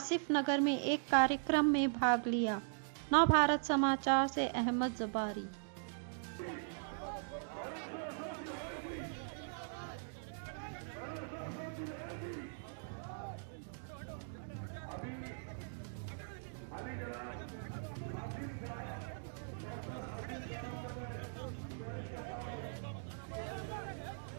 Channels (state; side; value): silent; left; digital silence